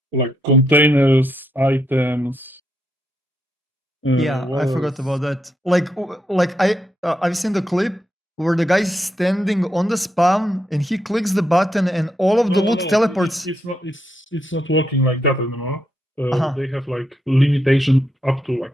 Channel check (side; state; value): both; normal; correlation 0.80